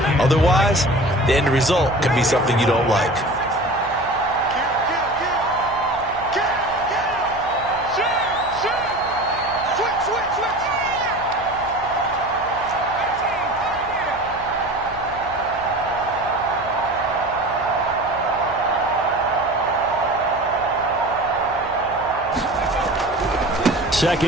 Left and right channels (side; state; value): right; noise; hum, 17 dB below the sound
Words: Otherwise, the end result can be something you don't like.